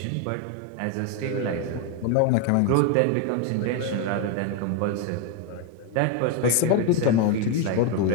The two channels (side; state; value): both; different; correlation 0.02